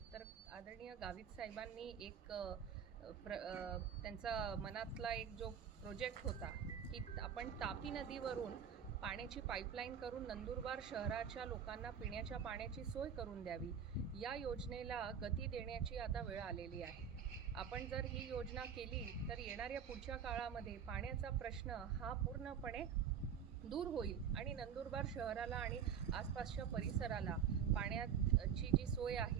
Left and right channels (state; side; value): quieter; left; 7.9 dB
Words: तर आदरणीय गावित साहेबांनी एक त्यांचा मनातला एक जो प्रोजेक्ट होता की आपण तापी नदीवरून पाण्याची पाईपलाईन करून नंदुरबार शहराच्या लोकांना पिण्याच्या पाण्याची सोय करून द्यावी, या योजनेला गती देण्याची आता वेळ आलेली आहे. आपण जर ही योजना केली तर येणाऱ्या पुढच्या काळामध्ये पाण्याचा प्रश्न हा पूर्णपणे दूर होईल आणि नंदुरबार शहराला आणि आसपासच्या परिसराला पाण्याची जी सोय